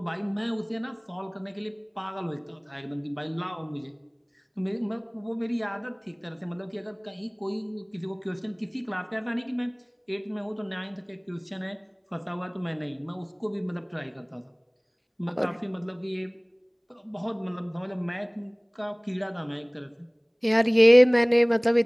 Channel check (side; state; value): both; identical; correlation 1.00